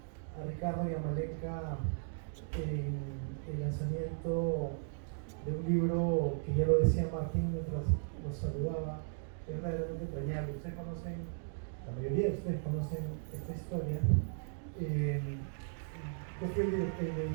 a Ricardo y a Malenka en el lanzamiento de un libro que ya lo decía Martín mientras nos saludaba, es verdaderamente entrañable. Ustedes conocen, la mayoría de ustedes conocen esta historia. Yo fui el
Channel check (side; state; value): left; silent; digital silence